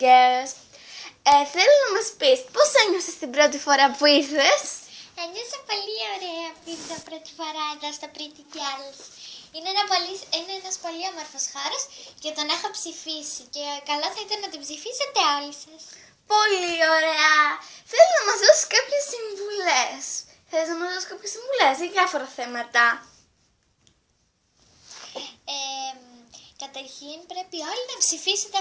Girls. Θέλω να μας πεις πώς ένιωσες την πρώτη φορά που ήρθες? Ένιωσα πολύ ωραία που ήρθα πρώτη φορά εδώ στο Pretty Girls. Είναι ένας πολύ όμορφος χώρος και τον έχω ψηφίσει και καλό θα ήταν να τον ψηφίσετε όλοι σας. Πολύ ωραία. Θέλω να μας δώσεις κάποιες συμβουλές. Θέλεις να μας δώσεις κάποιες συμβουλές για διάφορα θέματα? Καταρχήν πρέπει όλοι να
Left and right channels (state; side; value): identical; both; correlation 1.00